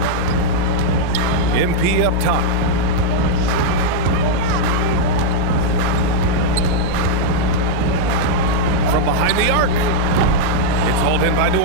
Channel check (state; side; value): different; both; correlation -0.01